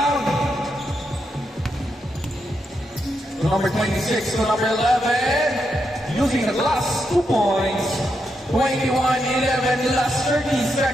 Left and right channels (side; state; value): both; normal; correlation 0.83